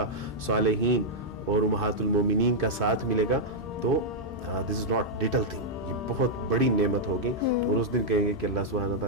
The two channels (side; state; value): both; normal; correlation -0.05